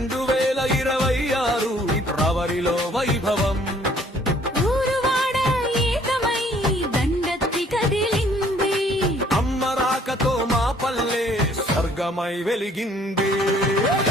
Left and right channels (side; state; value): both; normal; correlation 0.60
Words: ఫిబ్రవరిలో వైభవం ఊరువాడ ఏకమై దండెత్తి కదిలింది అమ్మ రాకతో మా పల్లె స్వర్గమై వెలిగింది